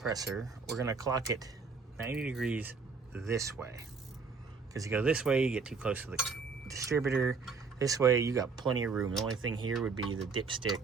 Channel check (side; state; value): left; quieter; 4.8 dB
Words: We're going to clock it 90 degrees this way. Because you go this way, you get too close to the distributor. This way, you got plenty of room. The only thing here would be the